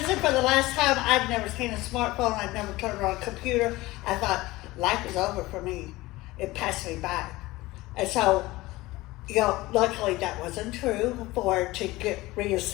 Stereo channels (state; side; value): quieter; right; 19.4 dB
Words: for the last time. I've never seen a smartphone. I've never turned on a computer. I thought life is over for me. It passed me by, and so. Luckily that wasn't true. To get